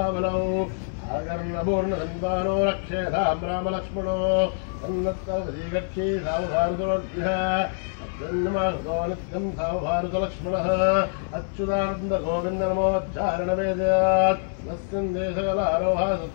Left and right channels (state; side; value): silent; right; 59 dB below the other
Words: आगर्णपूर्णधन्वानो रक्षेधां रामलक्ष्मणो तन्नत्तर्वजीगच्छी सावभारतोऽभ्यः जन्मार्गो नित्यं सावभारतलक्ष्मणः अच्युतानन्दगोविन्दनमोच्चारणवेद्यात् नस्यन्देशकलारोहा